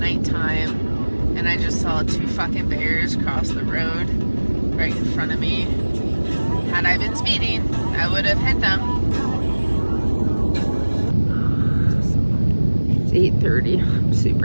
and I just saw 2 fucking bears cross the road right in front of me. Had I been speeding, I would have hit them. It's 8:30. I'm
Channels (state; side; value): inverted; both; correlation -1.00